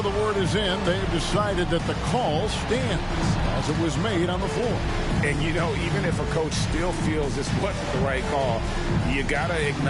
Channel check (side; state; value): both; identical; correlation 1.00